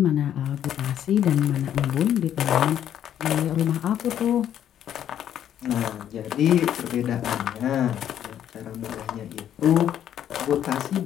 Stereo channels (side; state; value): right; quieter; 10.3 dB